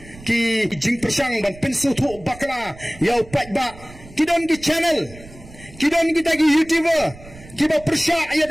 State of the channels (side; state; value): right; noise; rumble, 19 dB below the sound